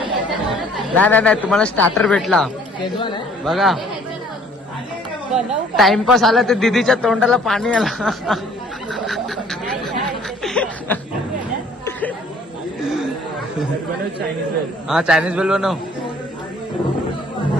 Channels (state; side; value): normal; both; correlation 0.57